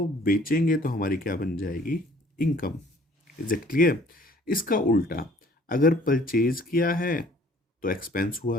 बेचेंगे तो हमारी क्या बन जाएगी? इनकम। Is it clear? इसका उल्टा, अगर परचेज किया है तो एक्सपेंस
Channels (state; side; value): normal; both; correlation 0.55